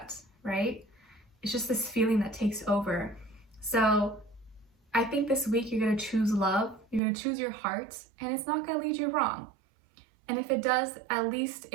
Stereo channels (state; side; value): drops out; left; at 7.0 s